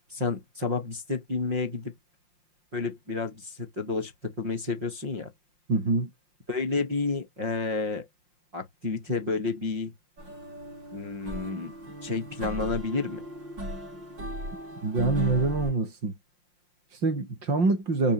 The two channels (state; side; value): late; left; 5.5 ms